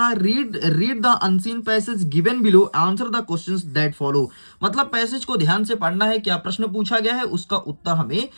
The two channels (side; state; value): both; inverted; correlation -1.00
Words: है read the unseen passage given below, answer the questions that follow. मतलब पैसेज को ध्यान से पढ़ना है, क्या प्रश्न पूछा गया है उसका उत्तर हमें